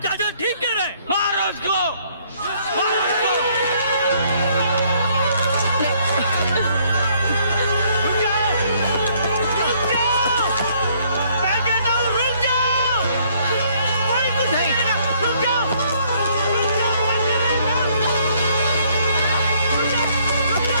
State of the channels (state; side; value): inverted; both; correlation -0.65